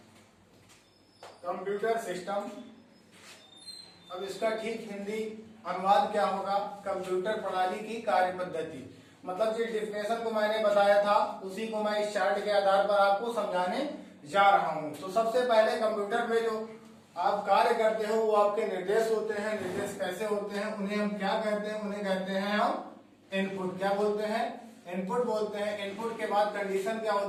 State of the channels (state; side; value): identical; both; correlation 1.00